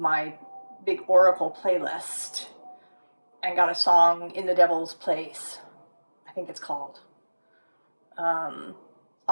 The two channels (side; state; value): both; inverted; correlation -1.00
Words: big Oracle playlist and got a song, In the Devil's Place, I think it's called.